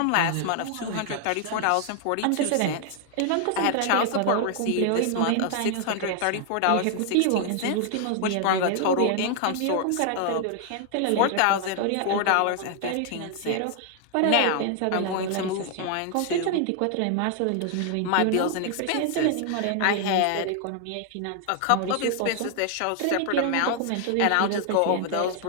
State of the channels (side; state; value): both; different; correlation 0.00